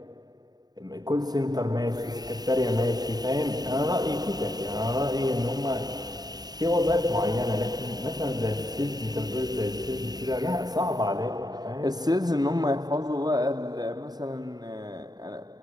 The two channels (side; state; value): left; late; 0.19 ms